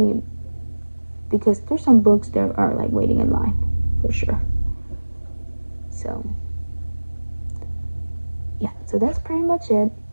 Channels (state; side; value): inverted; both; correlation -1.00